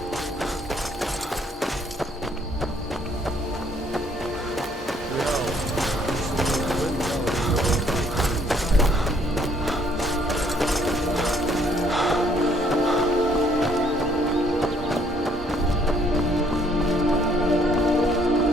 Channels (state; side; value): normal; both; correlation 0.65